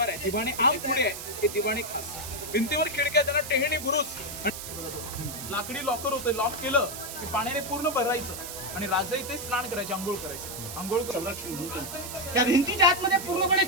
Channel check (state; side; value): noise; right; hiss, 9 dB below the sound